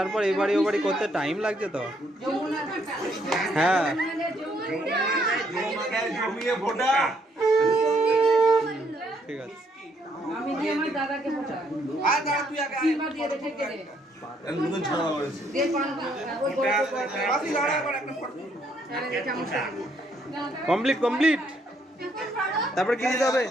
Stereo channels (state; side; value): normal; both; correlation 0.70